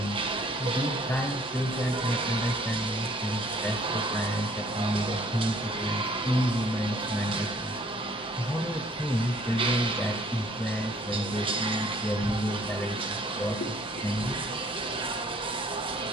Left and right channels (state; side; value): normal; both; correlation 0.58